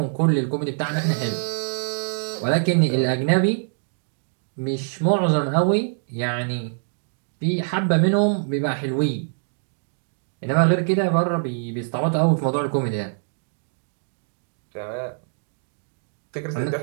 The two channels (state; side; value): silent; left; digital silence